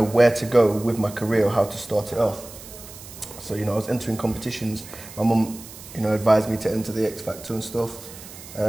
where to go with my career or how to start it off. So, I was entering competitions. My mum, advised me to enter the X Factor and stuff.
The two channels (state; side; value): noise; right; hiss, 16 dB below the sound